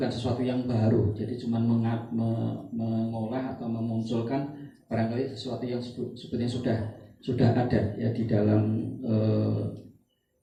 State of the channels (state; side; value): identical; both; correlation 1.00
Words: sesuatu yang baru, jadi cuma mengolah atau memunculkan barangkali sesuatu yang sebetulnya sudah ada ya di dalam